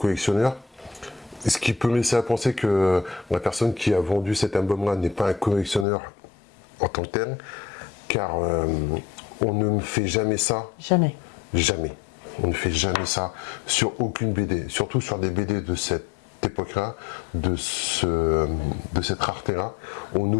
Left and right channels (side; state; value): right; drops out; at 5.9 s